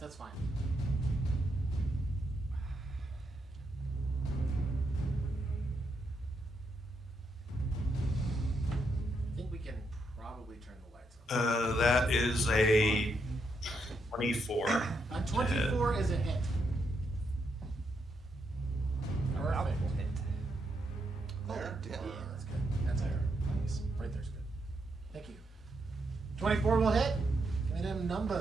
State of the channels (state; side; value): normal; both; correlation 0.80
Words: fine. I think we can probably turn the lights on. That is a 24. 24 is a hit. Perfect. There, Yeah, damn. that's good. That's there. Nice. Right there's good. Thank you. 24 will hit. Give me them